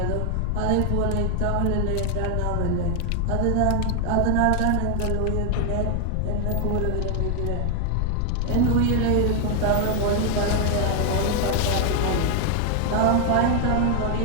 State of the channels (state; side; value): different; both; correlation 0.00